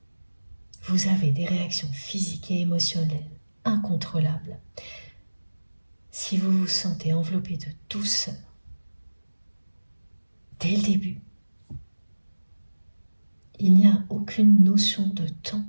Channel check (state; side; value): inverted; both; correlation -1.00